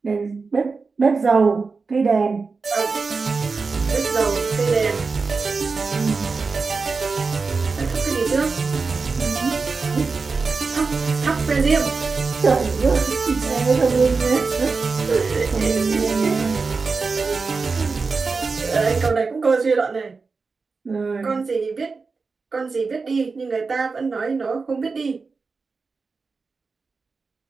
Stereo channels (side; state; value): left; quieter; 4.5 dB